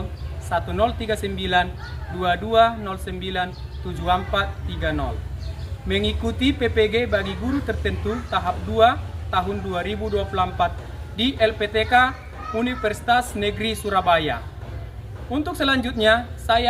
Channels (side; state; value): both; identical; correlation 1.00